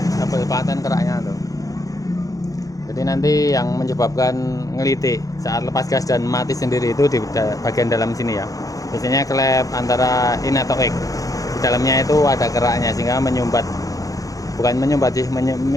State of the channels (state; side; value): late; right; 0.17 ms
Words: double paten keraknya tuh. Jadi nanti yang menyebabkan ngelitik saat lepas gas dan mati sendiri itu di bagian dalam sini ya. Biasanya klep antara in atau X, di dalamnya itu ada keraknya sehingga menyumbat, bukan menyumbat sih,